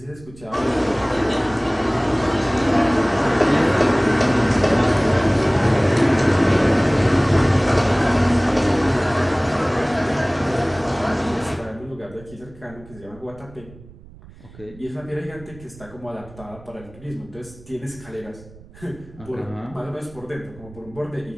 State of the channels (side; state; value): right; noise; rumble, 21 dB below the sound